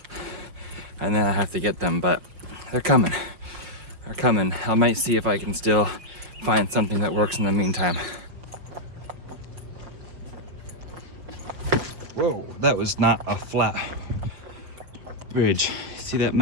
And then I have to get them, but they're coming. They're coming. I might see if I can still find something that works in the meantime. Whoa, that was not a flat bridge. See that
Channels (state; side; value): late; left; 5.7 ms